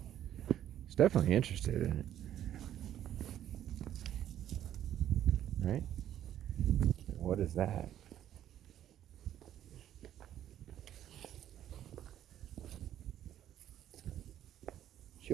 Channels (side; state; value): left; quieter; 11.3 dB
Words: He's definitely interested in it. Right? What is that? She